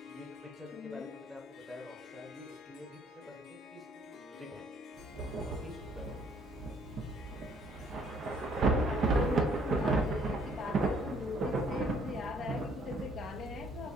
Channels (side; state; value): both; normal; correlation 0.62